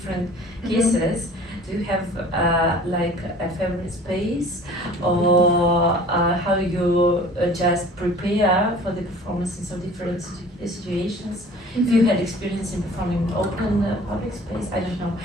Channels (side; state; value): both; normal; correlation 0.46